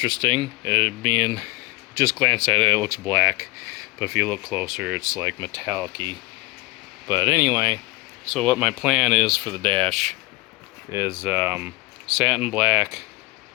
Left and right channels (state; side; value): quieter; right; 22.5 dB